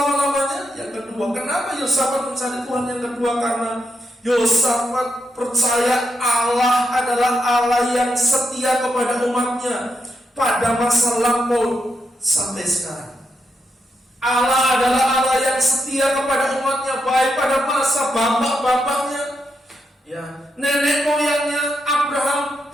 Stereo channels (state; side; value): normal; both; correlation 0.82